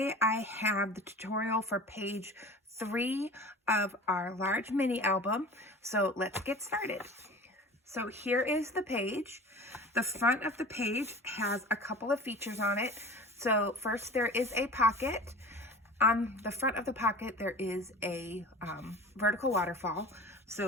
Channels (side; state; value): both; normal; correlation 0.39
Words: I have the tutorial for page 3 of our large mini album. So let's get started. So here is the page. The front of the page has a couple of features on it. So first, there is a pocket. On the front of the pocket, there is a vertical waterfall.